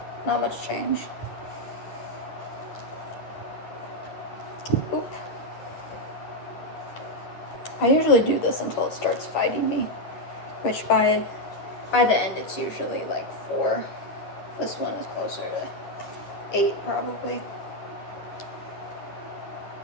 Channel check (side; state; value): right; late; 10 ms